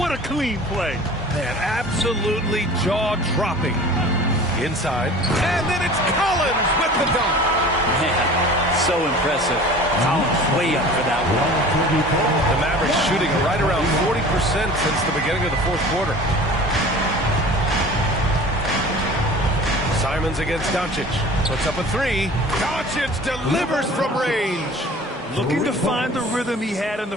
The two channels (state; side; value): normal; both; correlation 0.42